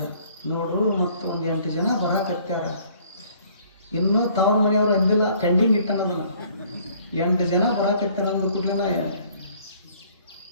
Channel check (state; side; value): inverted; both; correlation -0.58